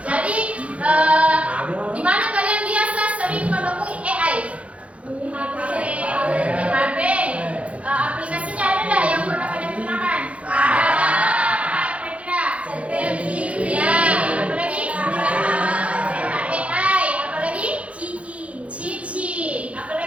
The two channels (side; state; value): left; late; 0.063 ms